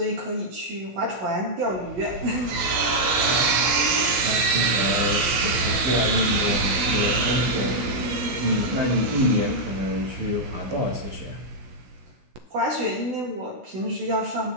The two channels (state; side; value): late; left; 17 ms